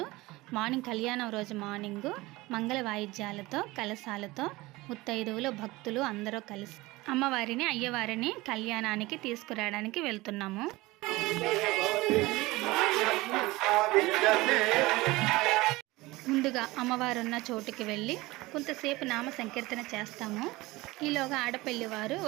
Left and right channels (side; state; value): left; quieter; 20.5 dB